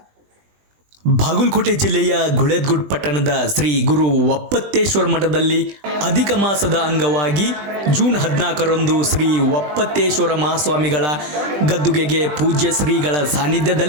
Bagalkote ಜಿಲ್ಲೆಯ ಗುಳೇದಗುಡ್ ಪಟ್ಟಣದ ಶ್ರೀ ಗುರು ಒಪ್ಪತ್ತೇಶ್ವರ ಮಠದಲ್ಲಿ ಅಧಿಕ ಮಾಸದ ಅಂಗವಾಗಿ ಜೂನ್ 14ರಂದು ಶ್ರೀ ಒಪ್ಪತ್ತೇಶ್ವರ ಮಹಾಸ್ವಾಮಿಗಳ ಗದ್ದುಗೆಗೆ ಪೂಜ್ಯ ಶ್ರೀಗಳ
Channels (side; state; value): left; late; 20 ms